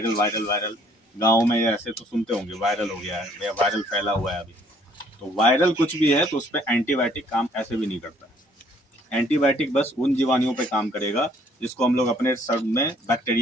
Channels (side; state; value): both; normal; correlation 0.62